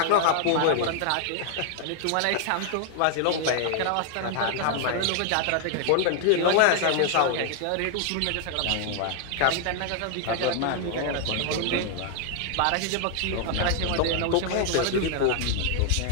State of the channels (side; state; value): both; different; correlation 0.00